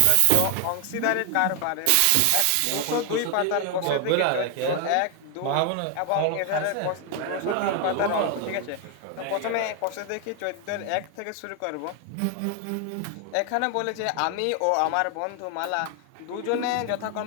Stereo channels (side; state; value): both; different; correlation 0.00